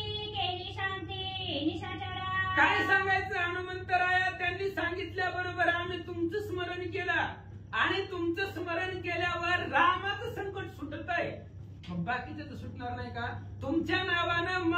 काय सांगायचं हनुमंतराया, त्यांनी सांगितल्याबरोबर आम्ही तुमचं स्मरण केलं आणि तुमचं स्मरण केल्यावर रामाचं संकट सुटत आहे. मग बाकीचं तर सुटणार नाही का? तुमच्या नावानं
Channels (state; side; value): identical; both; correlation 1.00